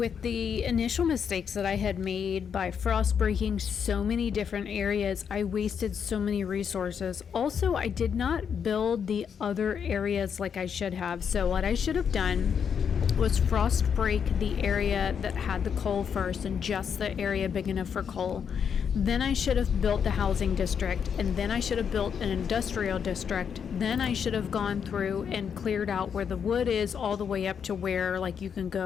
the initial mistakes that I had made by frost breaking so many different areas, I wasted so many resources. Also, I did not build the other areas like I should have. So what I should have done was frost break the area that had the coal first, and just the area big enough for coal. Then I should have built the housing district, and then I should have built an industrial district. Then I should have gone through and cleared out where the wood is all the way up to where like you can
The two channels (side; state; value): right; quieter; 7.2 dB